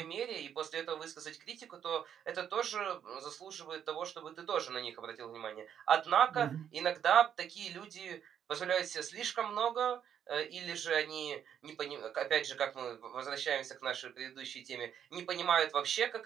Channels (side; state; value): left; quieter; 9.0 dB